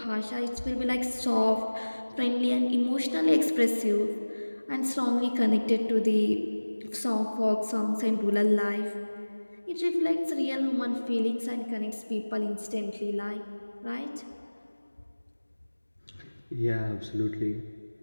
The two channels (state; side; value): inverted; both; correlation -1.00